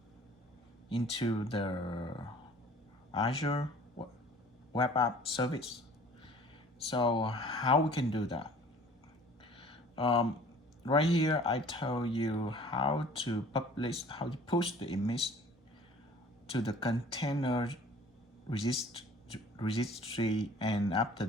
into the Azure web app service. So how we can do that? Um, right here, I tell you how to push the image to the container registry, and after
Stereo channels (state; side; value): normal; both; correlation 0.50